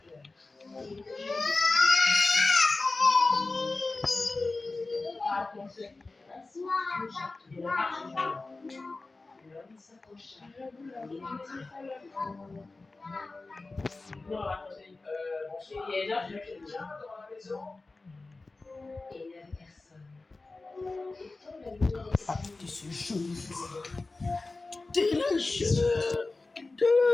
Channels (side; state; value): right; quieter; 3.4 dB